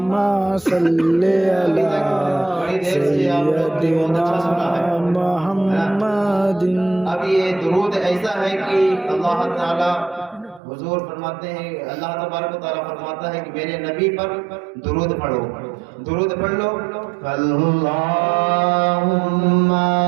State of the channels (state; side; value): drops out; left; at 10.6 s